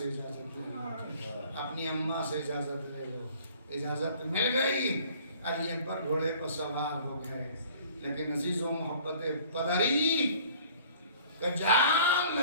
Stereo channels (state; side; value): inverted; both; correlation -0.52